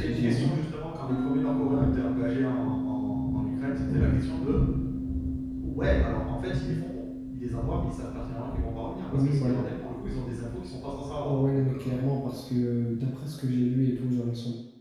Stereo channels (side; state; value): both; identical; correlation 1.00